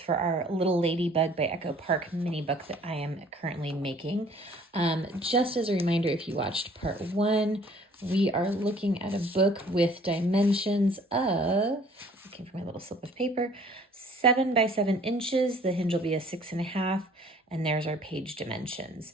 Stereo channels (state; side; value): normal; both; correlation 0.55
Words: our Little Ladybug by Echo Park mini book that I am currently making. Just as a reminder, if you watched part one, we are looking at a book with dimensions of, looking for my little slip of paper, 7 by 7 inches. The hinge will be a 6.5, and there's our page dimensions.